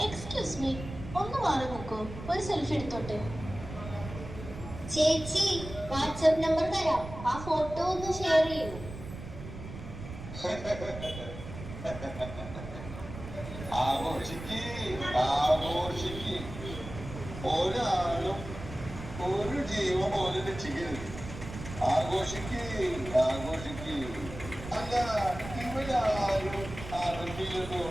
എക്സ്ക്യൂസ് മീ, ഒന്ന് മാറി നോക്കൂ, ഒരു സെൽഫി എടുത്തോട്ടെ. ചേച്ചി, വാട്സ്ആപ്പ് നമ്പർ തരാം, ആ ഫോട്ടോ ഒന്ന് ഷെയർ ചെയ്യൂ. ഒരാളും ഒരു ജീവൻ പോലും രക്ഷിക്കരുത്. ആഘോഷിക്ക്. അല്ല, ഇവരാരും ആരോഗ്യം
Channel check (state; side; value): noise; right; rumble, 11 dB below the sound